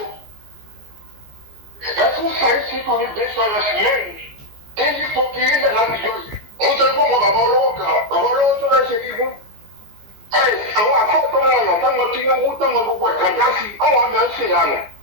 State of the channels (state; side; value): late; left; 15 ms